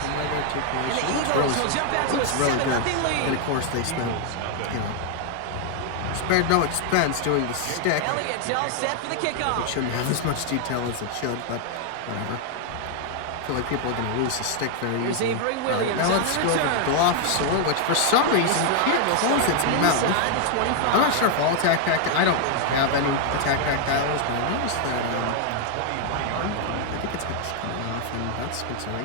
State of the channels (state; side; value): different; both; correlation 0.00